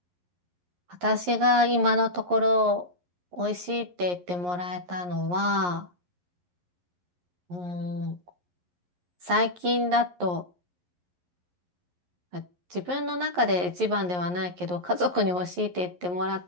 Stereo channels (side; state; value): left; late; 11 ms